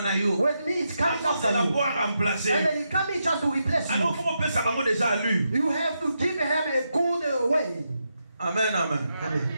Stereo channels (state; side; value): inverted; both; correlation -0.84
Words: With me, it comes after you. And then it comes just to replace you. You have to give him a good way. Amen, amen. Amen.